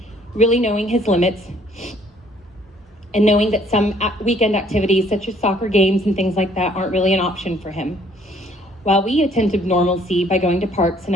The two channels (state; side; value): normal; both; correlation 0.61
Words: really knowing his limits, and knowing that some weekend activities such as soccer games and things like that aren't really an option for him. While we attempted normalcy by going to parks and